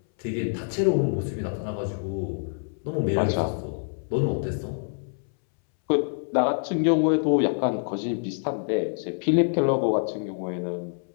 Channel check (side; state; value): right; silent; 61 dB below the other